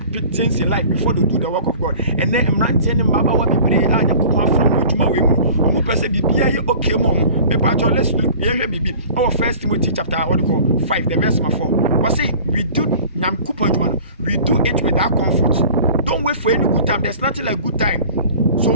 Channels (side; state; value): both; inverted; correlation -0.44